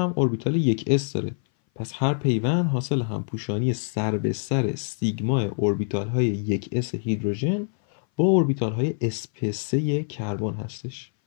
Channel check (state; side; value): silent; right; 58 dB below the other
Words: اوربیتال 1s داره. پس هر پیوند حاصل همپوشانی سر به سر سیگما اوربیتال های 1s هیدروژن با اوربیتال های sp3 کربن هستش.